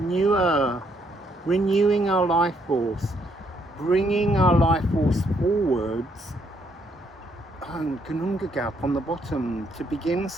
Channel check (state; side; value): normal; both; correlation 0.72